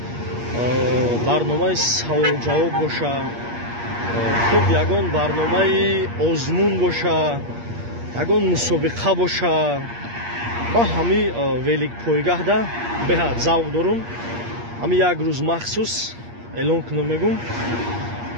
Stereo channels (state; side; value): late; left; 8.5 ms